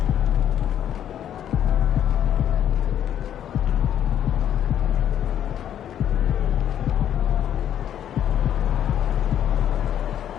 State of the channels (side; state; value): right; quieter; 10.2 dB